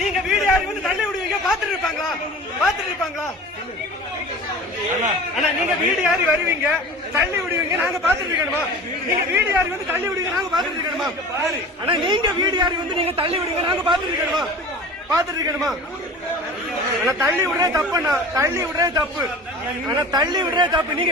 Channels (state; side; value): normal; both; correlation 0.38